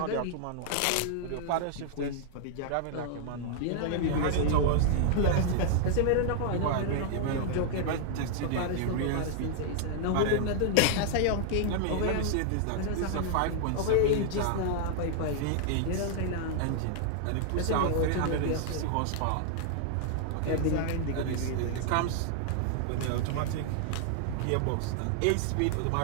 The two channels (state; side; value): different; both; correlation -0.01